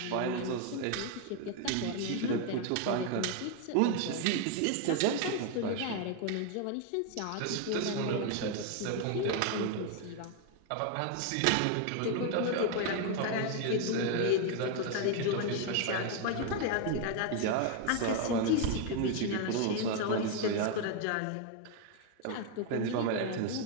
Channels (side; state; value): both; different; correlation 0.01